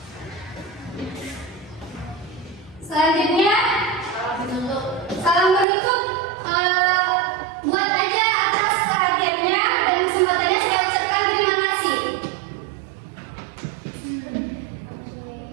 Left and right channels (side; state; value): left; drops out; at 5.7 s